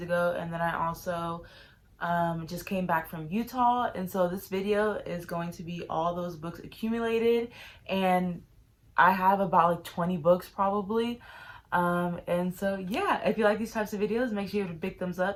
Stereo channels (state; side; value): identical; both; correlation 1.00